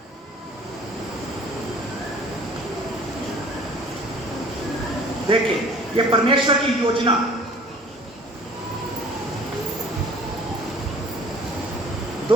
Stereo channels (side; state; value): both; normal; correlation 0.50